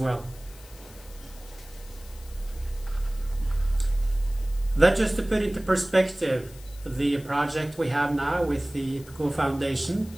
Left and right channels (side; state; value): left; noise; hiss, 22 dB below the sound